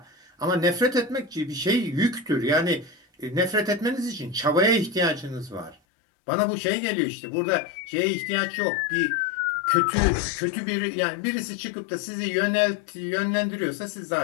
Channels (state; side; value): drops out; right; at 5.8 s